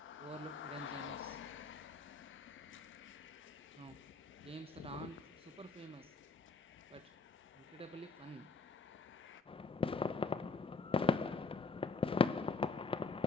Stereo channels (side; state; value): right; quieter; 4.2 dB